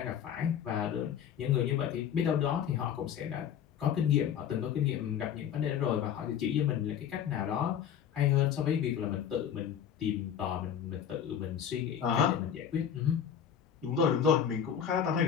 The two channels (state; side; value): quieter; right; 8.7 dB